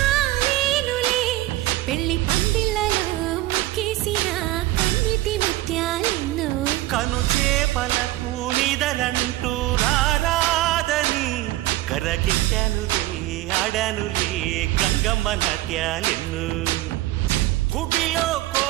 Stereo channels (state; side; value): quieter; left; 16.5 dB